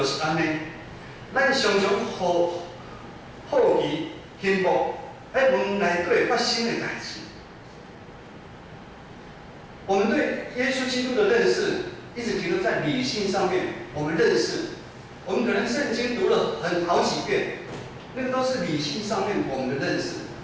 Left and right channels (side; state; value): both; identical; correlation 1.00